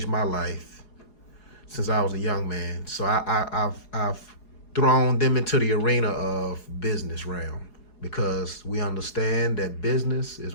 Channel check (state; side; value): late; right; 4.8 ms